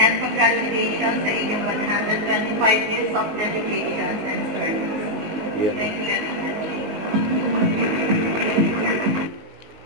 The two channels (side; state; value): left; late; 18 ms